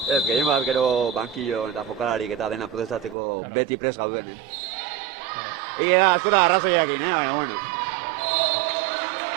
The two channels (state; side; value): drops out; left; at 3.2 s